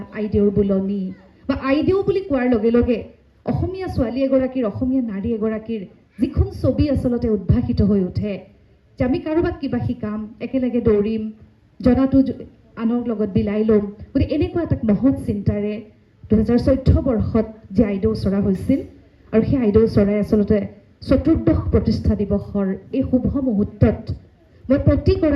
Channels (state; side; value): identical; both; correlation 1.00